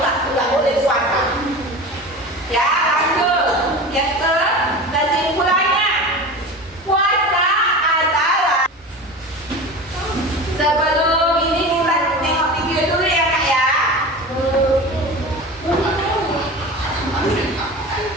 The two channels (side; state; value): both; normal; correlation 0.32